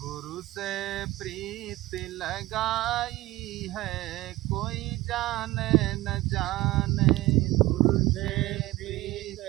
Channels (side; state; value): left; quieter; 18.3 dB